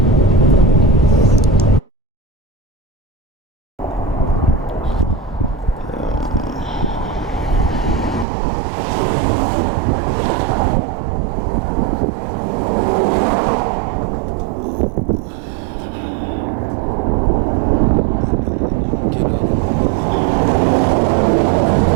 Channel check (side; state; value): left; drops out; at 8.2 s